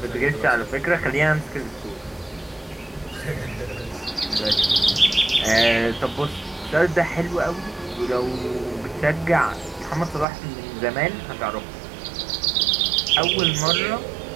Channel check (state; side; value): drops out; left; at 10.2 s